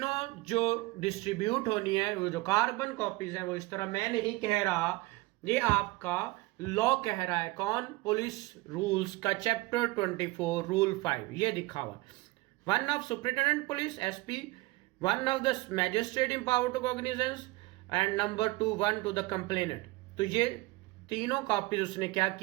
जो डिस्ट्रीब्यूट होनी है, वो जो कार्बन कॉपीज है, वो इस तरह मैं नहीं कह रहा, ये आपका लॉ कह रहा है। कौन? पुलिस रूल्स का चैप्टर 24 रूल 5 ये दिखा हुआ। 1 of superintendent police SP, 1 of the magistrate empowered to cognizance and number 2 1 to the complainant. तो ये तीनों कॉपीज उसने क्या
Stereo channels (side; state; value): left; quieter; 21.5 dB